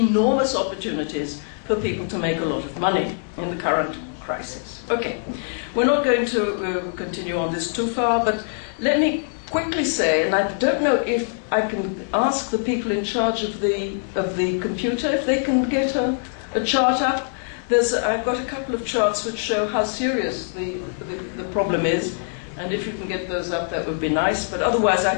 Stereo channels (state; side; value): silent; right; digital silence